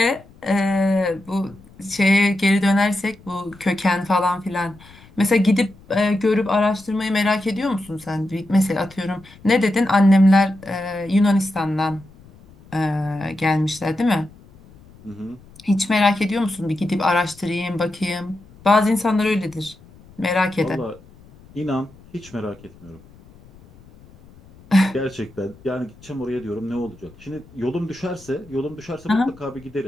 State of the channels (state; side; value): noise; left; rumble, 24 dB below the sound